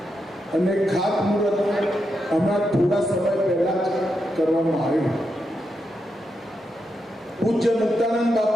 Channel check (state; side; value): normal; both; correlation 0.84